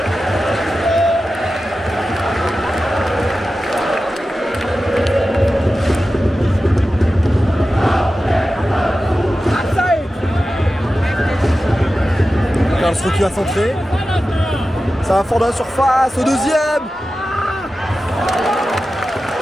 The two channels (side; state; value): both; normal; correlation 0.93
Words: Karlsruhe qui va centrer. Ça va fort dans la surface, au deuxième.